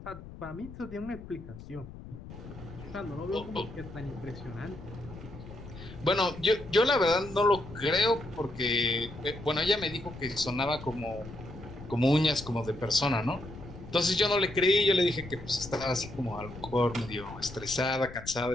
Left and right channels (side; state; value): left; noise; rumble, 14 dB below the sound